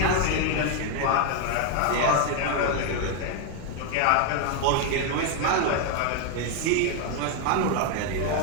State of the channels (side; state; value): both; different; correlation 0.01